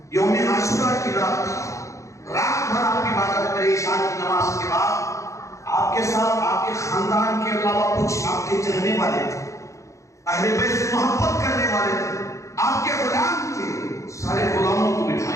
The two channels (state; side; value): late; right; 0.15 ms